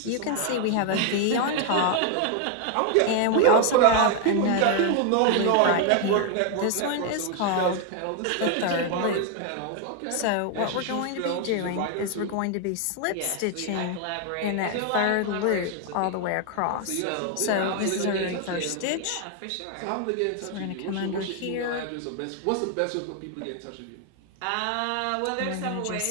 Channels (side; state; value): both; different; correlation 0.00